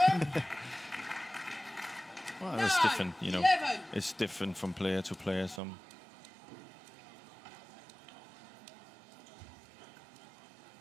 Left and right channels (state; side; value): drops out; left; at 5.6 s